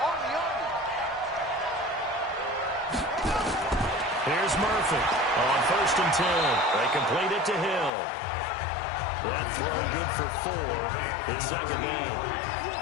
Here's Murphy on 1st and 10. They complete it to Hill. That throw good for 4. It's second down.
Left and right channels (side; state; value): right; drops out; at 7.9 s